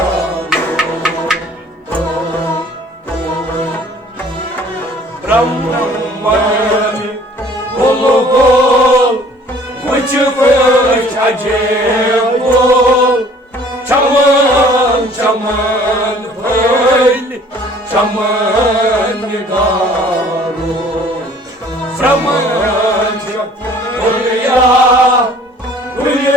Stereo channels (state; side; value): normal; both; correlation 0.53